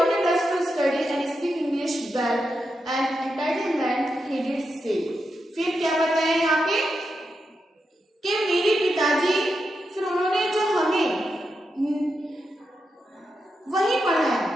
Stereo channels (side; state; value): both; normal; correlation 0.86